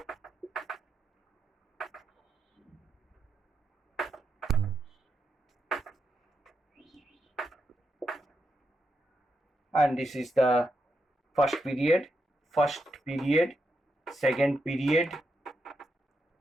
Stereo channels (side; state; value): both; normal; correlation 0.83